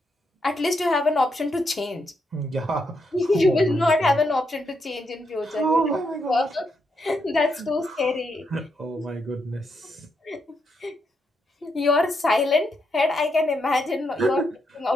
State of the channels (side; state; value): both; normal; correlation 0.80